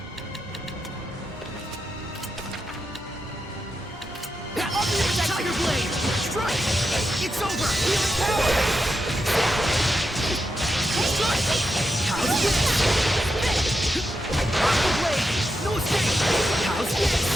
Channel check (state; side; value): normal; both; correlation 0.87